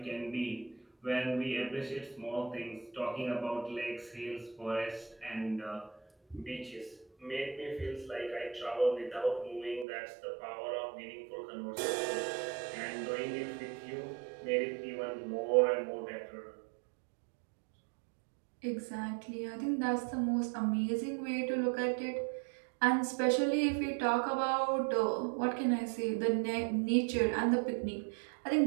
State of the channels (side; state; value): left; drops out; at 9.9 s